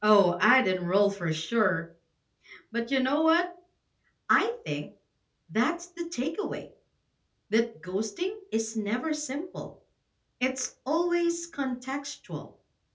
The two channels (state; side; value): identical; both; correlation 1.00